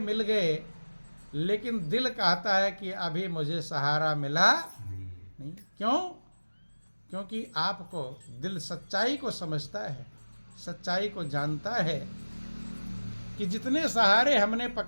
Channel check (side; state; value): both; inverted; correlation -1.00